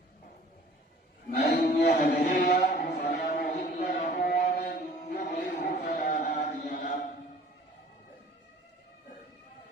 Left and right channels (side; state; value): both; normal; correlation 0.51